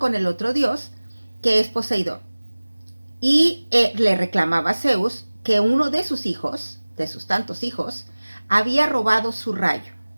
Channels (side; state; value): both; inverted; correlation -1.00